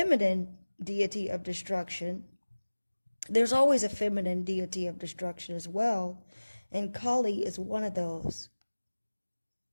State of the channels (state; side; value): inverted; both; correlation -1.00